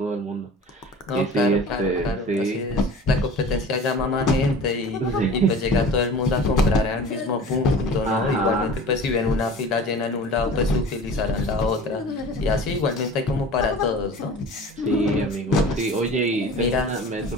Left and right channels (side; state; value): both; normal; correlation 0.40